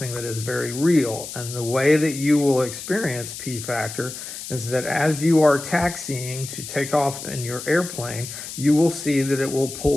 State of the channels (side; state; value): left; noise; hiss, 10 dB below the sound